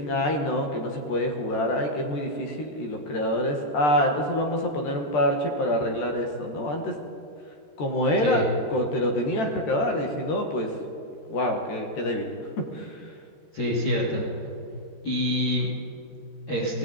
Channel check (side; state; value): right; late; 13 ms